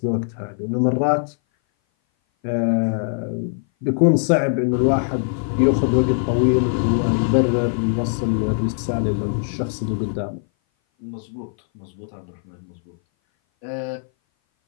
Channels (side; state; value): right; silent; 58 dB below the other